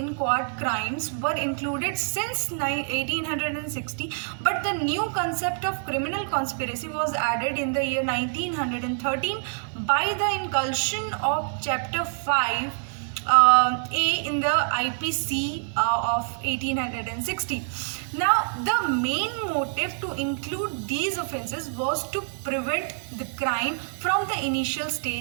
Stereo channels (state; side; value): silent; left; 61 dB below the other